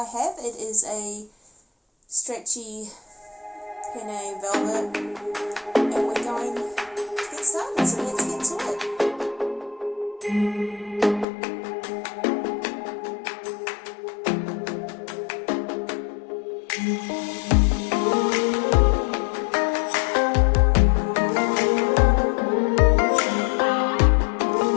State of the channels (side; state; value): right; drops out; at 11.2 s